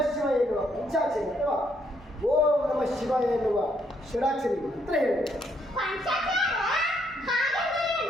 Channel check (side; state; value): both; normal; correlation 0.72